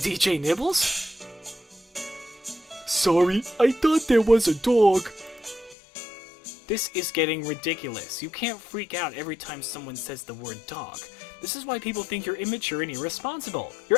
Nibbles! sorry. I thought there was a dog. This is getting ridiculous. You can't freak out every time someone says the word dog. This is why people think you're immature and irresponsible. You're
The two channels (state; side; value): drops out; right; at 5.8 s